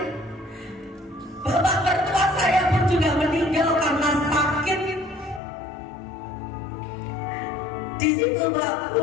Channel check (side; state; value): right; drops out; at 5.4 s